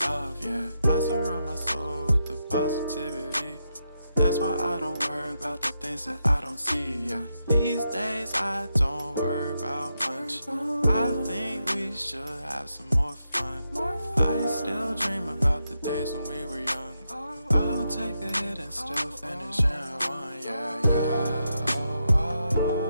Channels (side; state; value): both; inverted; correlation -0.84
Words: yeah. I surround my soul with the positivity. That's why I don't worry about the things that I don't see, yeah. These days I don't worry about much. I think we should have some more fun. I still dream about the days when we were young. I'll take a hit and still finish in one, yeah, yeah. Oh, oh,